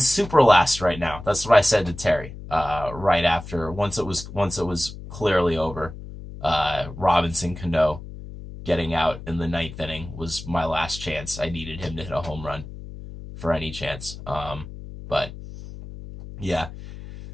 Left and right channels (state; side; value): noise; left; hum, 13 dB below the sound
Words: last right now. That's what I said to Terry right after, once it was clearly over. Robinson Cano getting out in the 9th inning was my last chance. I needed him to hit a home run for any chance. But yeah.